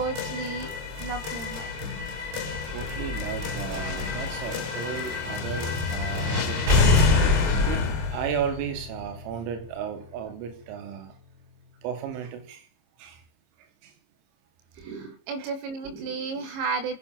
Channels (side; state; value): left; late; 26 ms